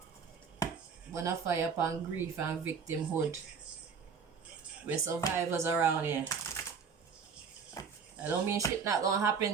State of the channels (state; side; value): quieter; left; 6.0 dB